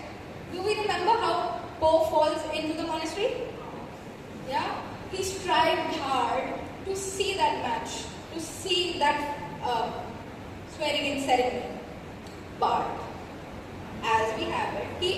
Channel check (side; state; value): both; identical; correlation 1.00